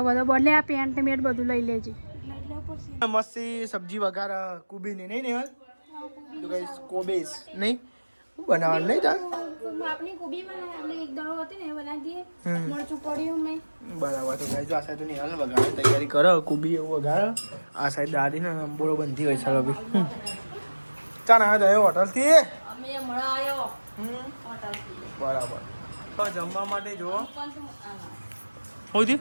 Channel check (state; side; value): inverted; both; correlation -1.00